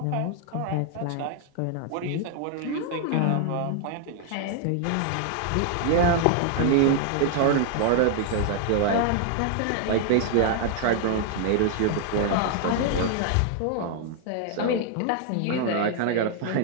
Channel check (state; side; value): different; both; correlation 0.00